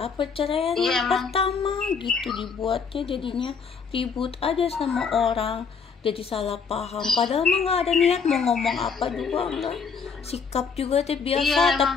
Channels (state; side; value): quieter; right; 5.7 dB